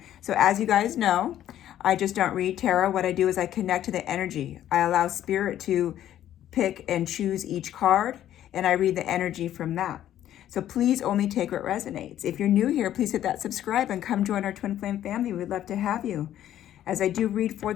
So as you guys know, I just don't read tarot. What I do is I connect to the energy. I allow spirit to pick and choose each card, and I read the energy from that. So please only take what resonates. If you're new here, please hit that subscribe and come join our Twin Flame family. We'd love to have you. As I do read for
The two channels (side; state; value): right; quieter; 11.8 dB